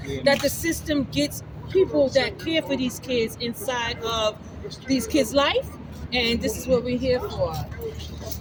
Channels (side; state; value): both; identical; correlation 1.00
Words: that the system gets people that care for these kids inside of these kids' life. And this is what we're here for.